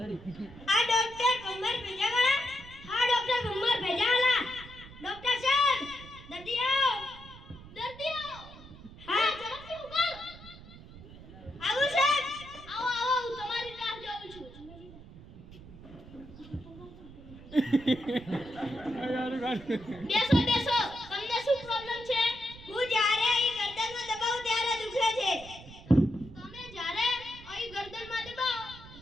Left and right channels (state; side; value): noise; right; rumble, 17 dB below the sound